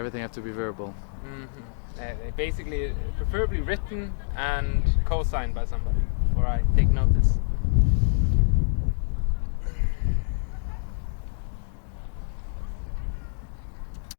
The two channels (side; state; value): right; silent; digital silence